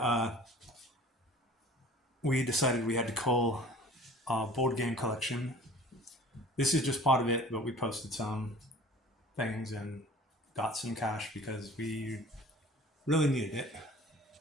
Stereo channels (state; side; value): normal; both; correlation 0.46